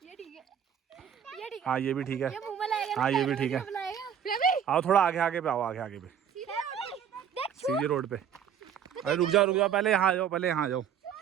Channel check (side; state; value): left; quieter; 8.5 dB